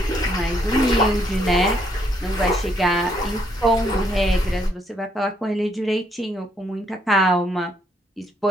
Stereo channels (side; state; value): both; normal; correlation 0.72